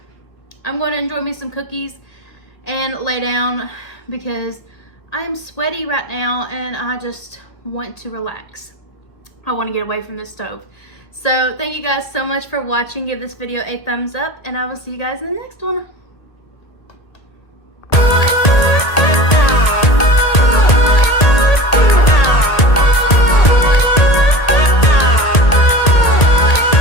I'm going to enjoy me some cookies and lay down because I am sweaty right now, and I just want to relax. I want to get away from this stove. So thank you guys so much for watching. Give this video a thumbs up, and I will see you guys in the next one.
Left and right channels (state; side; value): late; right; 1.8 ms